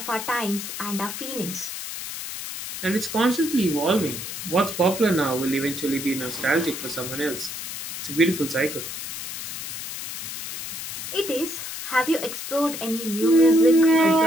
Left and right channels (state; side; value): noise; left; hiss, 7 dB below the sound